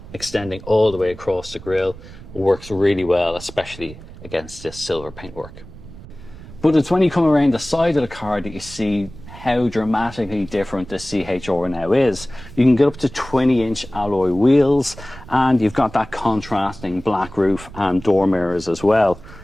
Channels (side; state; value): right; noise; rumble, 17 dB below the sound